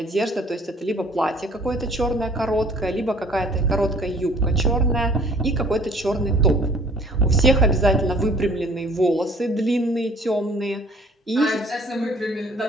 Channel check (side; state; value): both; normal; correlation 0.53